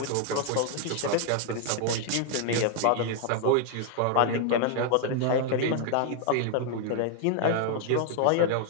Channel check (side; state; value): both; different; correlation 0.00